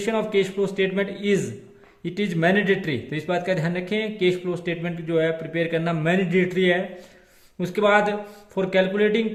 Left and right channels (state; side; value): identical; both; correlation 1.00